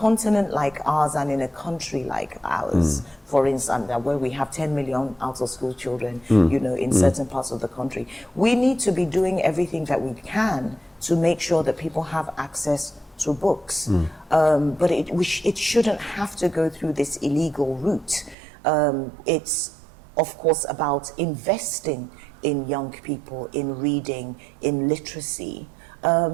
like ours and in a country like ours, for instance, where we have 10 million out-of-school children, in certain parts of the country, we need to be doing everything that we can to make sure that people have access to books. But it shouldn't have to go through this illegal route. It's, of course, about investing in young people, in reading, in literacy.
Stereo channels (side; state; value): left; drops out; at 18.4 s